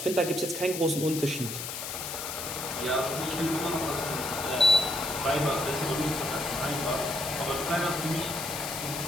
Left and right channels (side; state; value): left; noise; hiss, 6 dB below the sound